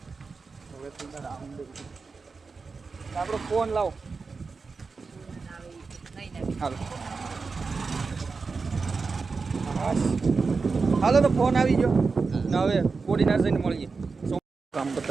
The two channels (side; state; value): left; quieter; 4.6 dB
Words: હવે આપણો ફોન લાવો હાલો તો ફોન આવી ગયો ને હવે કોડીનાર જઈને મળીએ કામ